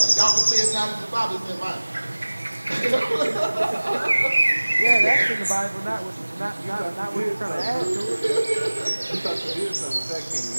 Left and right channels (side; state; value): both; inverted; correlation -1.00